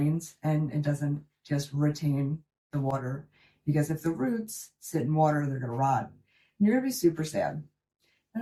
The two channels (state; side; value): identical; both; correlation 1.00